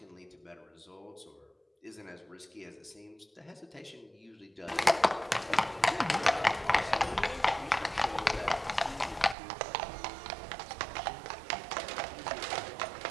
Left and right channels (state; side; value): drops out; left; at 9.3 s